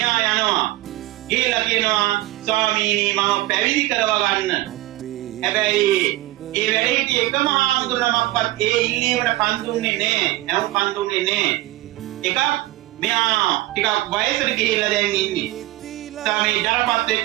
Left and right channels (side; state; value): left; quieter; 17.5 dB